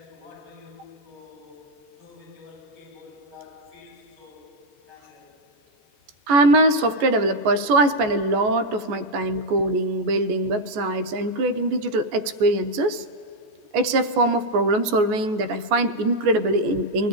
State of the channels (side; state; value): left; late; 14 ms